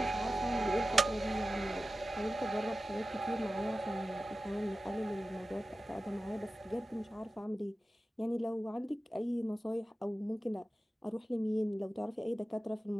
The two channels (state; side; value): normal; both; correlation 0.94